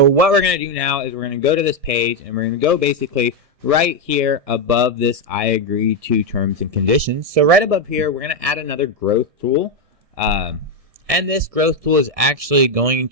what we're going to do now is we're going to go to this page and we're going to go basically right here above this I agree to terms and conditions. So right above here, we're going to add another growth tool. And this growth tool is actually going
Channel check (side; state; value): left; late; 1.6 ms